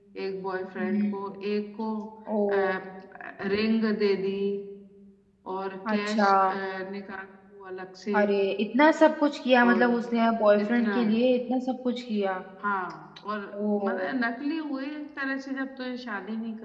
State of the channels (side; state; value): both; identical; correlation 1.00